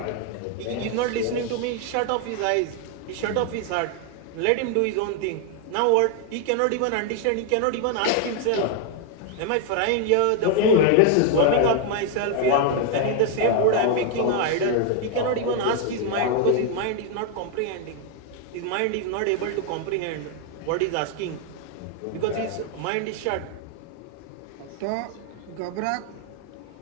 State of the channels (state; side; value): different; both; correlation 0.00